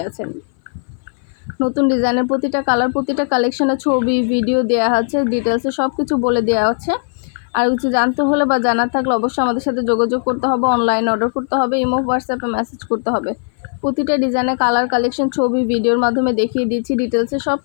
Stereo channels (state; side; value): silent; right; 60 dB below the other